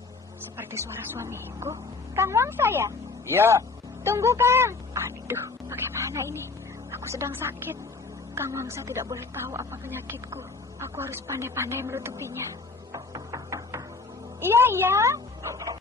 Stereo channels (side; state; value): right; quieter; 4.1 dB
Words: Seperti suara suamiku. Kang Wangsa ya? Iya. Tunggu, Kang. Aduh, bagaimana ini? Aku sedang sakit. Kang Wangsa tidak boleh tahu apa penyakitku. Aku harus pandai-pandai menutupinya. Iya.